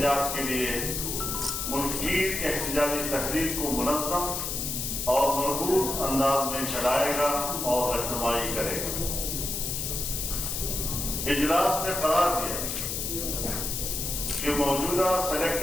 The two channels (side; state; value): left; noise; hiss, 2 dB below the sound